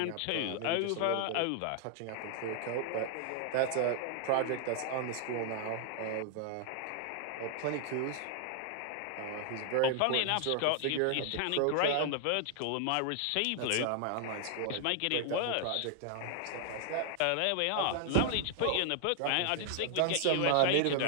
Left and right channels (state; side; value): different; both; correlation 0.00